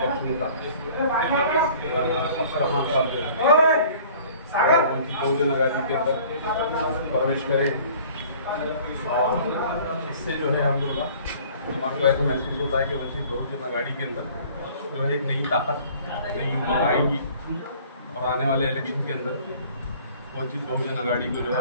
नेता अफसर खान साहब उनकी बहुजन आज़ादी के अंदर प्रवेश करें और इससे जो है हम लोग को ऐसा महसूस होता है कि वंचित बहुजन आघाड़ी के अंदर जो है एक नई ताकत नई उमंग आएगी और आने वाले इलेक्शन के अंदर वंचित बहुजन आघाड़ी को जो है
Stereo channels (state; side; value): inverted; both; correlation -0.51